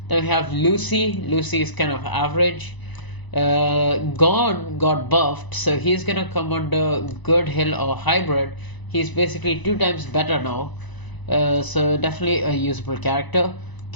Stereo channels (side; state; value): right; late; 1.0 ms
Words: Then we have Lucy. Lucy is kind of average. Gon got buffed, so he's gonna come under good hill or hybrid. He's basically 2 times better now, so definitely a usable character.